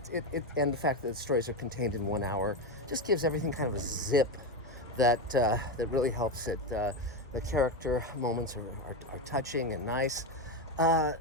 fact that the stories are contained in 1 hour just gives everything kind of a zip that really helps it. The character moments are touching and nice.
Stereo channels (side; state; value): both; normal; correlation 0.13